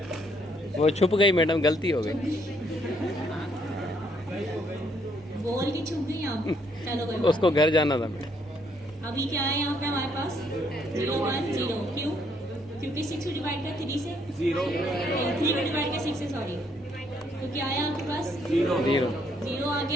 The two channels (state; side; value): normal; both; correlation 0.70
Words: वो छुप गई मैडम, गलती हो गई। बोल के छुप गई आप। चलो कोई बात उसको घर जाना था मैडम। नहीं। अभी क्या है यहाँ पे हमारे पास? 010। क्यों? क्योंकि 6 को डिवाइड कर 3 से 0 3 को डिवाइड कर 6 से, सॉरी। तो क्या आया आपके पास? 0 0 आ